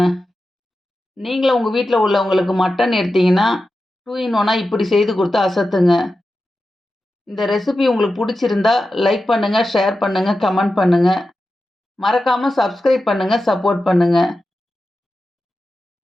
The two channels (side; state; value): both; normal; correlation 0.92